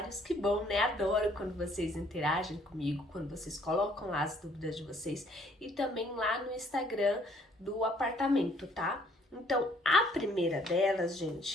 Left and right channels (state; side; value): normal; both; correlation 0.63